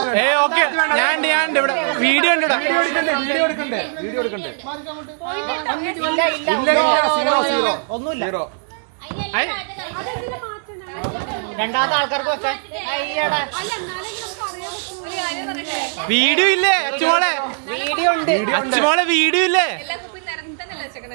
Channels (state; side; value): silent; left; digital silence